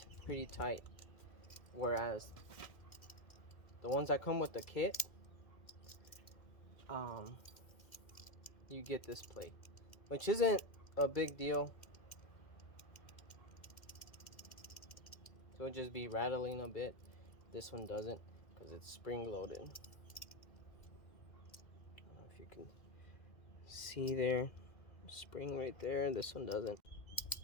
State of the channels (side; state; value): right; late; 2.1 ms